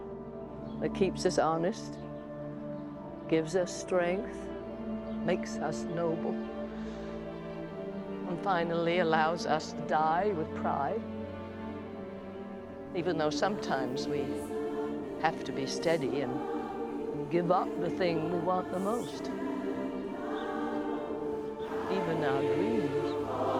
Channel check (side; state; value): both; identical; correlation 1.00